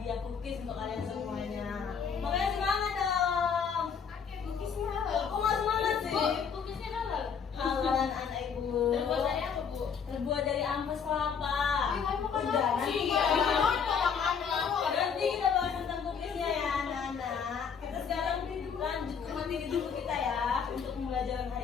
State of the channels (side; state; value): right; quieter; 6.6 dB